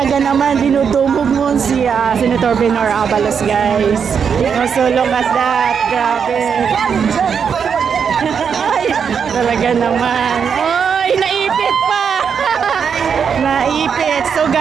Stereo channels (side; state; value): left; quieter; 6.8 dB